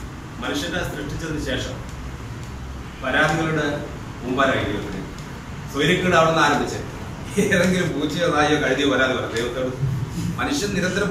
മനുഷ്യനെ സൃഷ്ടിച്ചതിന് ശേഷം പരാതികളുടെ മുമ്പാരായി ദൈവത്തിന് സ്വൈര്യക്കേട് അവിടെ നിന്ന് ആരംഭിച്ചത്. ഏതെങ്കിലും പൂച്ചയോ നായോ കഴുതിയോ പരാതി പറയാം ദൈവത്തോട്. മനുഷ്യൻ നിരന്തരം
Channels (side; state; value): both; identical; correlation 1.00